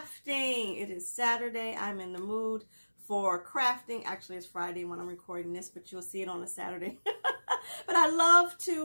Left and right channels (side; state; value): both; inverted; correlation -1.00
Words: It is Saturday. I'm in the mood for crafting. Actually, it's Friday when I'm recording this, but you'll see it on a Saturday. But I love